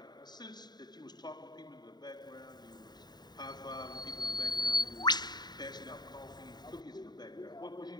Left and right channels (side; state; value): right; late; 0.20 ms